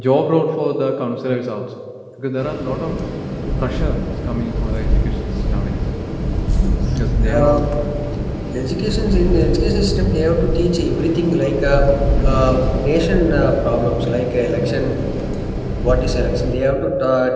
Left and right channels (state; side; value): identical; both; correlation 1.00